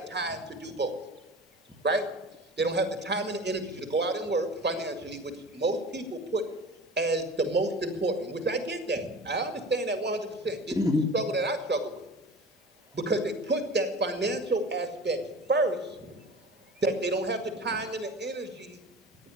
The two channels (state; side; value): normal; both; correlation 0.37